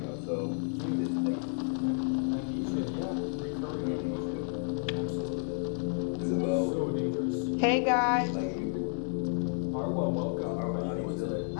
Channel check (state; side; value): silent; right; 57 dB below the other